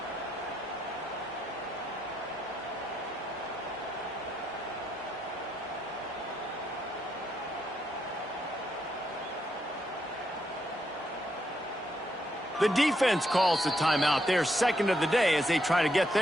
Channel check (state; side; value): normal; both; correlation 0.78